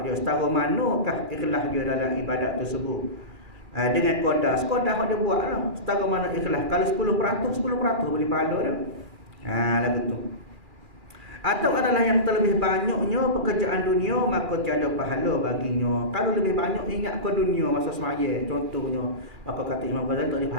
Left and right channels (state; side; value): late; left; 2.4 ms